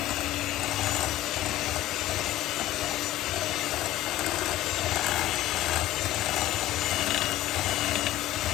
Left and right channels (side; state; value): right; quieter; 14.5 dB